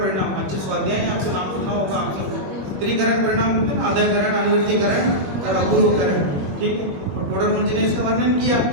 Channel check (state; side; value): late; left; 21 ms